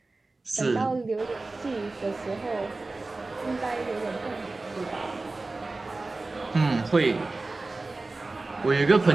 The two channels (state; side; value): quieter; left; 3.3 dB